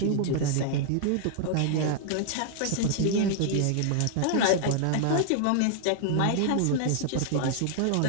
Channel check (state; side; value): different; both; correlation 0.00